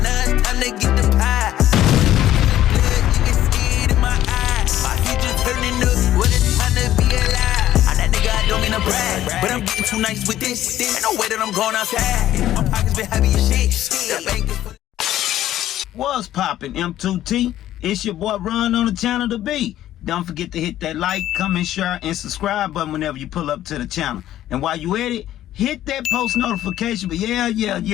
now it's time to get the pie. Blood, you can see it in my eyes. My future turning up, what it's time to be alive. I'm that nigga, I don't mean to brag, but I'm getting too nice with this. Ain't no way that I'm going outside. My pockets been heavy as shit. The bank is... What's poppin', M2T? It's your boy Run on the channel to be. Don't forget to hit that like, comment, share, and subscribe button whenever you pull up to the channel. And while you at it, hit that post notification. But yeah.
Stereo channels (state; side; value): quieter; right; 12.9 dB